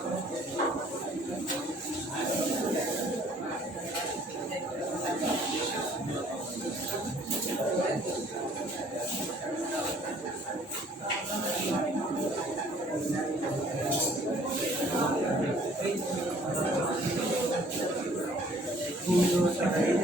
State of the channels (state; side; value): normal; both; correlation 0.57